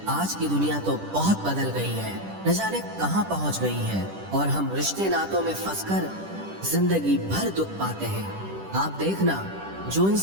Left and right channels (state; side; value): late; left; 10 ms